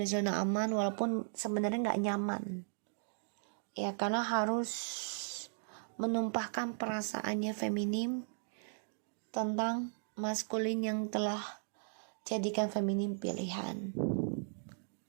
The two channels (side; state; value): left; silent; digital silence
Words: zona aman walaupun sebenarnya nggak nyaman. Ya, karena harus menumpahkan perasaannya feminim tentang maskulin yang telah jadikan feminim pilihan.